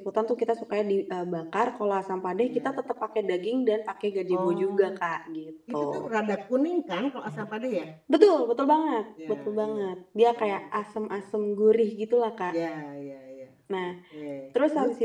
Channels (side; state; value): both; identical; correlation 1.00